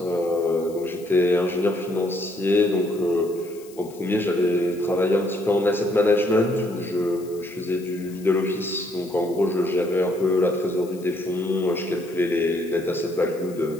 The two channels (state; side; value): noise; left; hiss, 23 dB below the sound